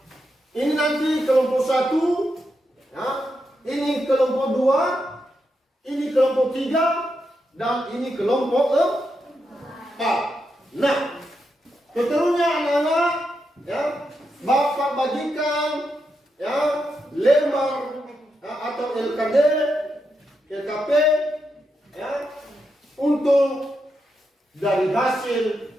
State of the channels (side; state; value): both; normal; correlation 0.84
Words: ini nanti kelompok 1, ya, ini kelompok 2, ini kelompok 3. Dan ini kelompok 4. Nah, seterusnya anak-anak, ya, Bapak bagikan ya lembar ya, atau LKD, LKP, ya, untuk dari hasil